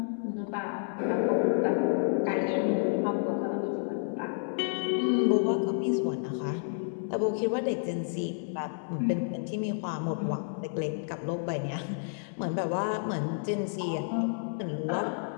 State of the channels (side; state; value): right; silent; digital silence